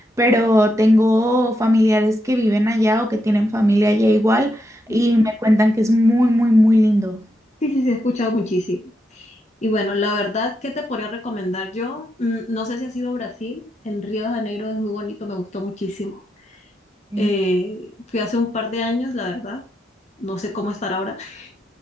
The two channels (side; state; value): both; normal; correlation 0.83